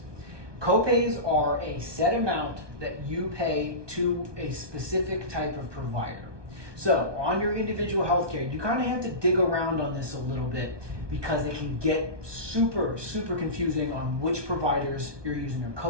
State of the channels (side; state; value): left; late; 1.2 ms